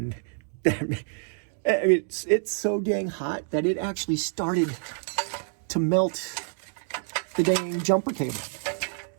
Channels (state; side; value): silent; left; 59 dB below the other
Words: I mean, it's so dang hot that it actually started to melt the dang jumper cable.